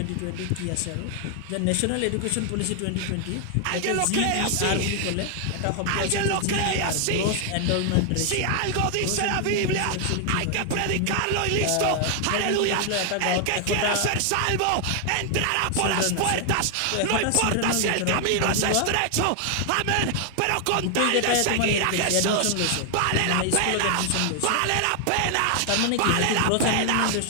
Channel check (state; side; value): different; both; correlation 0.00